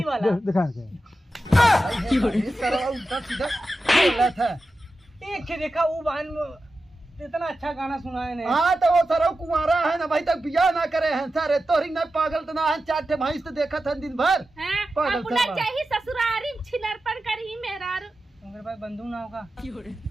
वाला। दिखा के शराब उल्टा सीधा बोला था। एक के देखा वो बहन इतना अच्छा गाना सुनाए ने। हाँ तो वो सरो कुंवारा है ना भाई, तक बियाह ना करे हैं सारे तोरी ना पागल तो ना है, चार ठे भैंस तो देखा था दिन भर हैं पागल अपना सब। चाहिए ससुरारी छिनरपन करी मेरा मेरे पास बंदूक ना होगा,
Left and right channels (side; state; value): both; normal; correlation 0.92